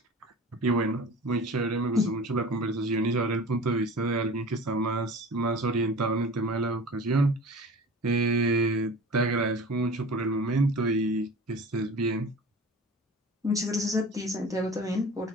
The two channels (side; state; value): both; normal; correlation 0.39